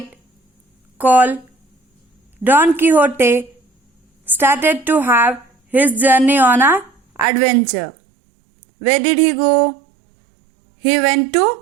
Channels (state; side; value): drops out; left; at 7.2 s